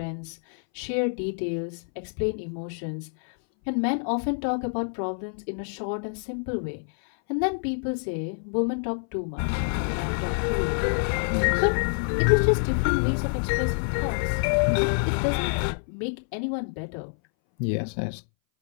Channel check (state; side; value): silent; right; 60 dB below the other